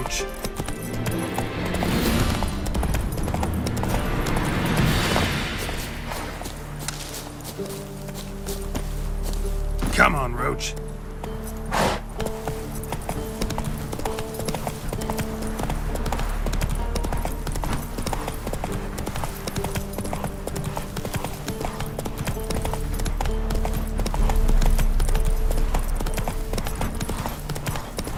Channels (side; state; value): both; identical; correlation 1.00